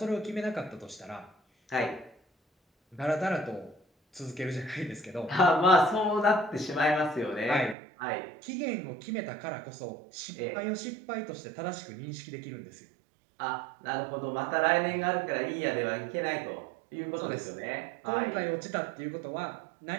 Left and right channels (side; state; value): left; drops out; at 7.8 s